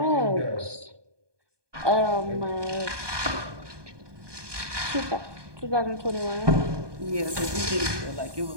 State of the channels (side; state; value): left; late; 1.2 ms